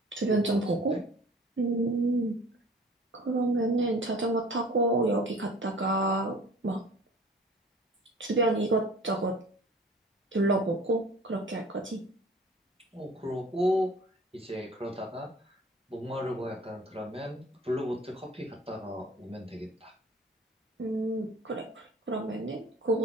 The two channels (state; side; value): normal; both; correlation 0.46